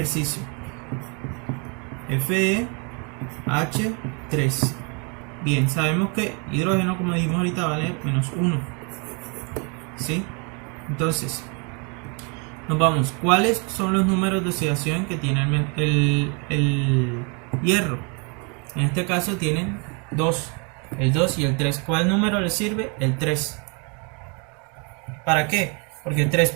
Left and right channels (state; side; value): quieter; left; 34.1 dB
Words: FeH3. Bien, sabemos que hidrógeno, como dijimos ahorita, vale -1, ¿sí? Entonces, nos vamos. ¿Cuáles son los números de oxidación que tiene el hierro? En este caso tienen 2, el 2 y el 3. ¿Cuál número le sirve? El 3. ¿Para qué? Porque 3